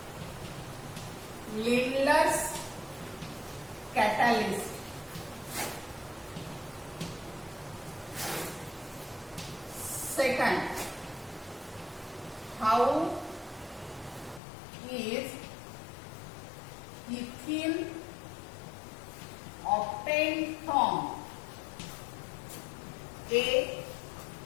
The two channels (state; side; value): drops out; right; at 14.4 s